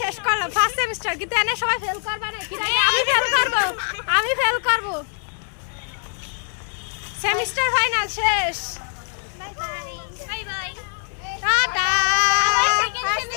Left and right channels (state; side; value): silent; right; digital silence